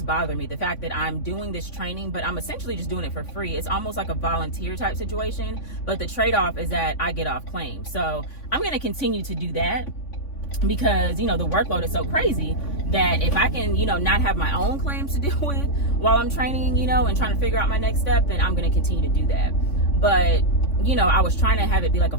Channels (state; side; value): late; right; 3.5 ms